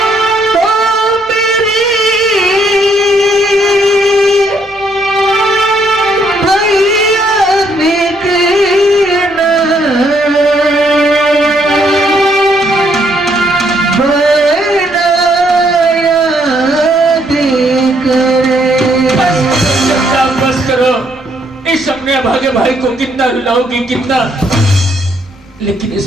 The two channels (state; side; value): normal; both; correlation 0.71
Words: अपने अभागे भाई को कितना रुलाओगी, कितना, लेकिन